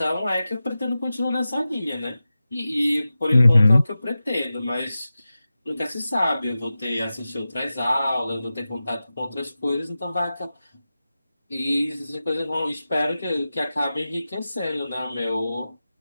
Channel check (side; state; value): both; inverted; correlation -0.94